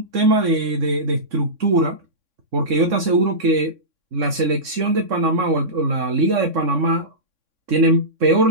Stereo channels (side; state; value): left; late; 3.6 ms